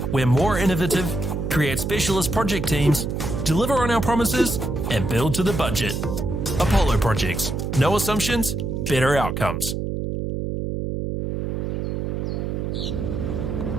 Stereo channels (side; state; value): right; noise; hum, 2 dB below the sound